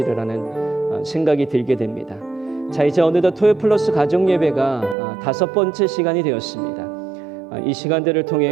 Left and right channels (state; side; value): drops out; left; at 5.0 s